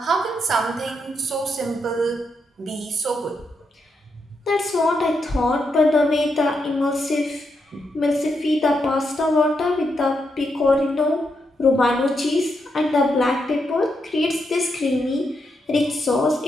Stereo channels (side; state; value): both; normal; correlation 0.82